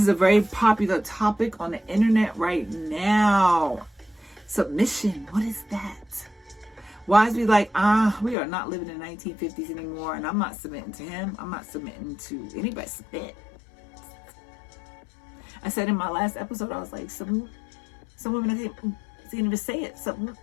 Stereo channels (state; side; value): drops out; right; at 8.3 s